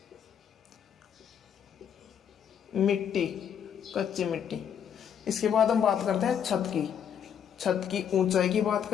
मिट्टी, कच्ची मिट्टी। इसके बाद हम बात करते हैं छत की ऊंचाई की बात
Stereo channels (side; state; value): right; quieter; 8.4 dB